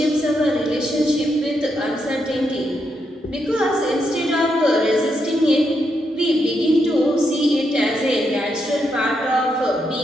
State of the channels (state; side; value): normal; both; correlation 0.81